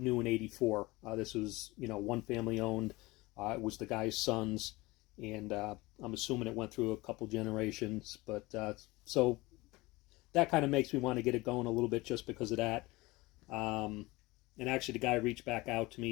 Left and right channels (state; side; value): quieter; right; 21.5 dB